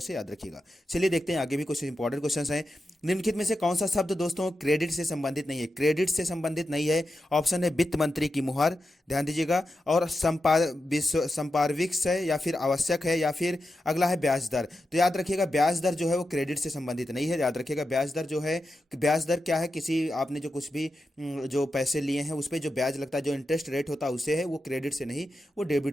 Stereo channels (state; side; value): normal; both; correlation 0.89